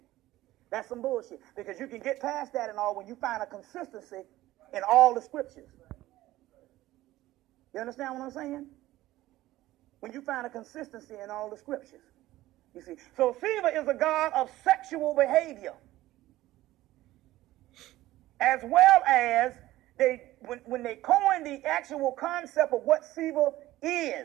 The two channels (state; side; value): quieter; left; 16.1 dB